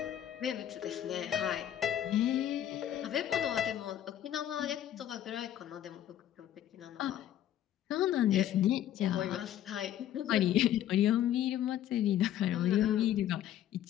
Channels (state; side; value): quieter; right; 11.3 dB